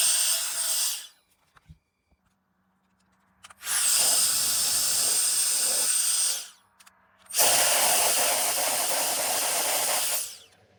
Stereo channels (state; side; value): identical; both; correlation 1.00